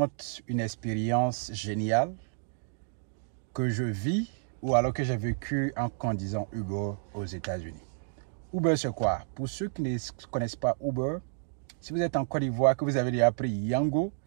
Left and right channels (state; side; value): silent; left; digital silence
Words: une expérience géniale que je vis ou alors que j'ai vécu en conduisant Uber aux États-Unis. Uber, c'est quoi? Pour ceux qui ne connaissent pas Uber, si vous êtes en Côte d'Ivoire, que vous avez déjà appris Yango,